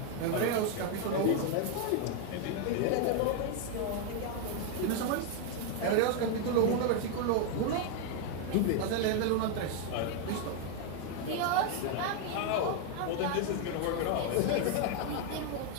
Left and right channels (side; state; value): both; different; correlation 0.01